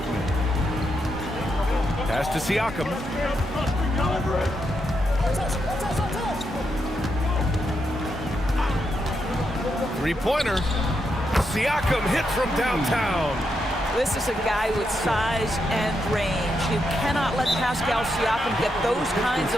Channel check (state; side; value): normal; both; correlation 0.82